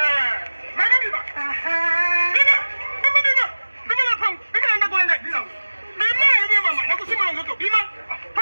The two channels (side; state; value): both; inverted; correlation -1.00